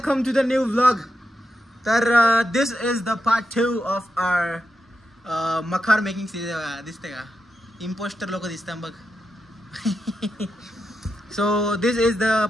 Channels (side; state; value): both; normal; correlation 0.86